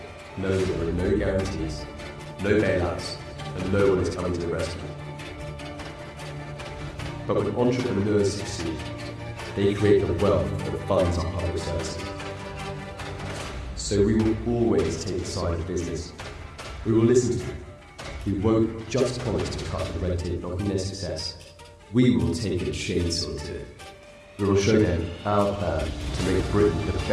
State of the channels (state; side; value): identical; both; correlation 1.00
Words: knowing that there are no guarantees, no bailouts, and no one is coming to the rescue. But when entrepreneurs succeed, they create the wealth that funds our public services. So we will always take the side of business. We will listen to them. We won't just promise to cut the red tape blocking their success. We will take a chainsaw to it. We will show them our plan to make Britain the